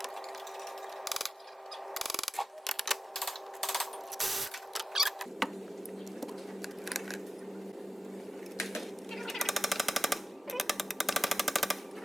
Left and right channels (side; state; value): both; normal; correlation 0.93